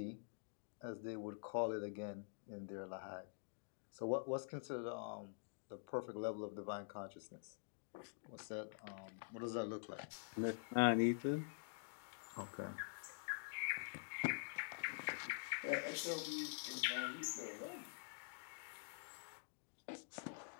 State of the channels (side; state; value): right; silent; digital silence